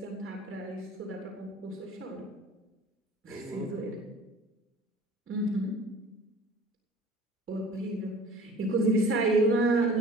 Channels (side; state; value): both; normal; correlation 0.45